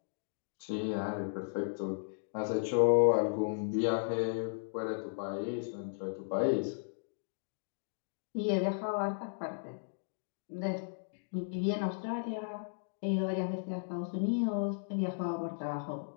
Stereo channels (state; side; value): silent; right; digital silence